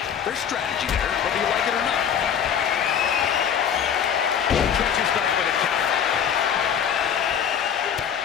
There's strategy there, whether you like it or not. Catches back with a counter.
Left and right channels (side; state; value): right; quieter; 8.1 dB